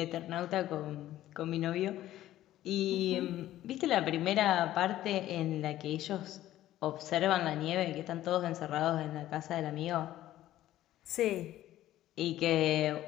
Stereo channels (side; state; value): right; quieter; 13.8 dB